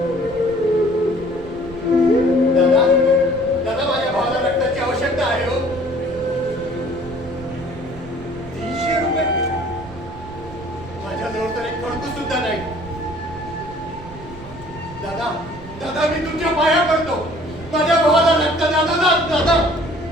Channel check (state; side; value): noise; right; rumble, 16 dB below the sound